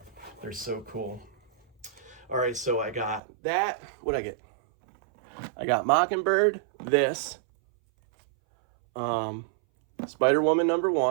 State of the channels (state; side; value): drops out; left; at 3.2 s